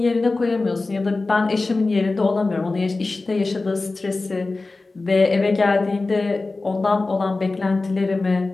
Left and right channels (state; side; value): quieter; right; 3.4 dB